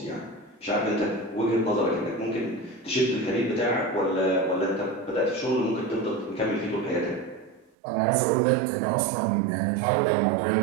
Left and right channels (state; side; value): drops out; left; at 7.7 s